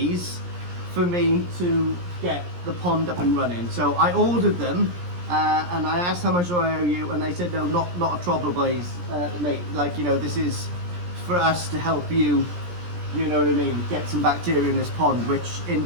for me to get the pond up and running. So I ordered them and I asked how much do I owe you, and they said no, not a trouble, boys, mate. Like, you know, this is for us to help you, you know what I mean, get some bacteria in this pond, which in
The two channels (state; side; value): late; left; 17 ms